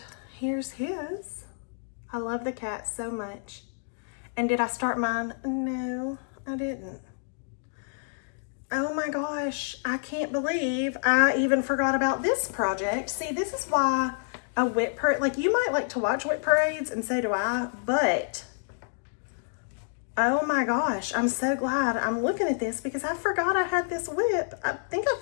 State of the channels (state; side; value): silent; right; digital silence